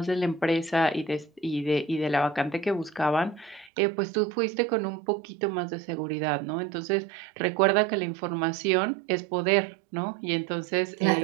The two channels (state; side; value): drops out; left; at 3.7 s